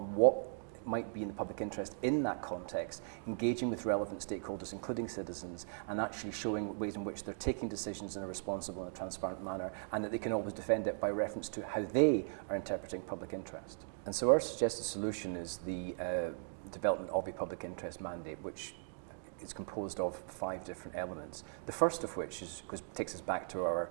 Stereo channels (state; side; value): silent; left; digital silence